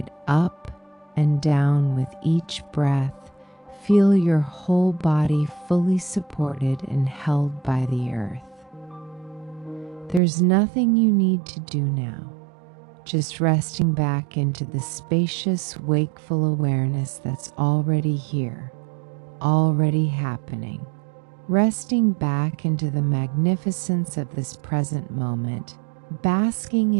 up and down with each breath. Feel your whole body fully supported and held by the earth. There's nothing you need to do now, just resting back into the spacious, wakeful awareness that's already here, already happening. Resting back into the magnificence of this present moment, basking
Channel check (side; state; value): left; drops out; at 10.2 s